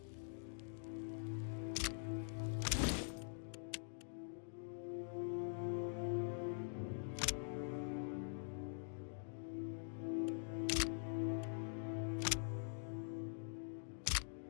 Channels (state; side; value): silent; right; digital silence